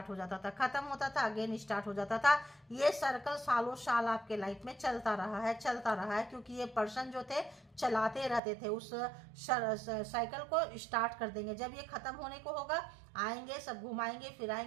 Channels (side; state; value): left; drops out; at 8.4 s